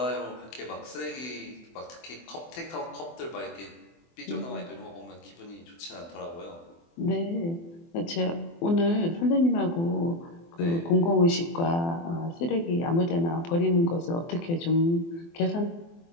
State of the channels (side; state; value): right; late; 24 ms